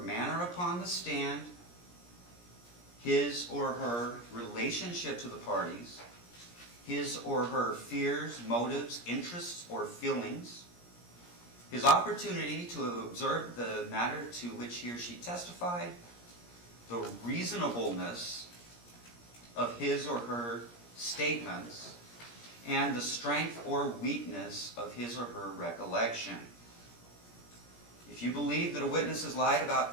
manner upon the stand, his or her relationship to the parties, his or her fears, motives, interests, or feelings, his opportunity to have observed the matter to which he or she testified, the reasonableness of his or her statements, and the strength or weakness of his or her recollection. If you believe that a witness has lied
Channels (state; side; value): late; right; 17 ms